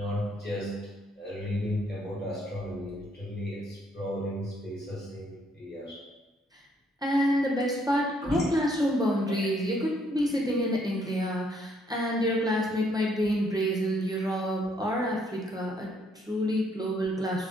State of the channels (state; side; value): normal; both; correlation 0.69